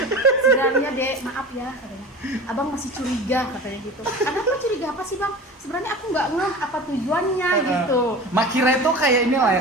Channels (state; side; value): normal; both; correlation 0.35